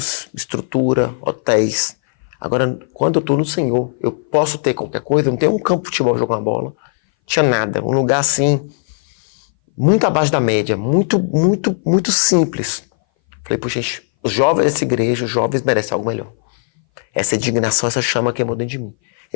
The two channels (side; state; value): right; silent; 60 dB below the other